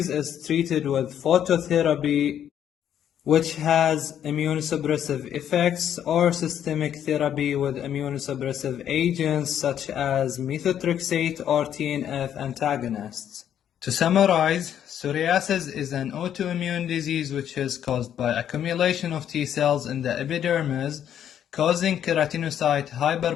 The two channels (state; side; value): quieter; right; 9.8 dB